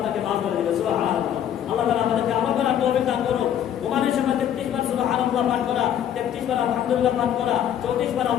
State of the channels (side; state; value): right; quieter; 10.0 dB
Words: মাফ করে দিবেন। সুবহানাল্লাহ। আল্লাহ তাআলা আমাদেরকে আমল করার তৌফিক দান করুন। ঘুমানোর সময় 33 বার সুবহানাল্লাহ পাঠ করা, 33 বার আলহামদুলিল্লাহ পাঠ করা, 34 বার